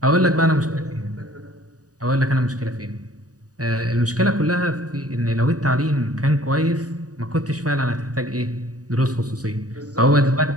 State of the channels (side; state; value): left; late; 0.67 ms